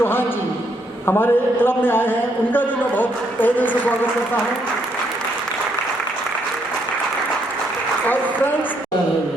जी हमारे क्लब में आए हैं, उनका भी मैं बहुत तहे दिल से स्वागत करता हूँ। और फ्रेंड्स,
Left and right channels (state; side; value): normal; both; correlation 0.73